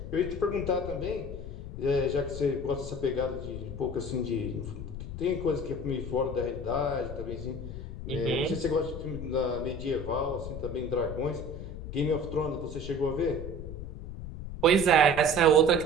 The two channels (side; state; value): left; noise; rumble, 9 dB below the sound